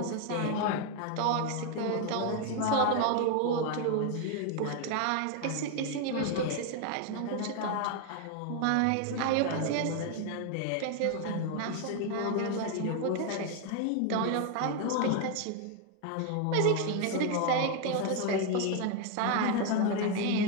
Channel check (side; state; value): both; different; correlation 0.01